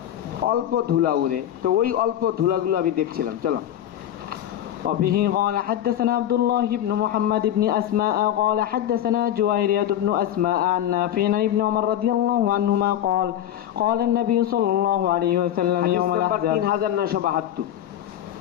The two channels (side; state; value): right; quieter; 11.4 dB